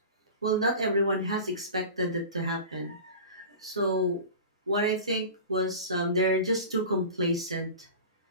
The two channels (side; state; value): both; inverted; correlation -0.34